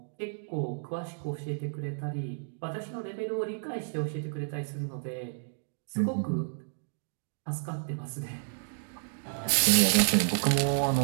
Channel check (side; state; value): left; silent; digital silence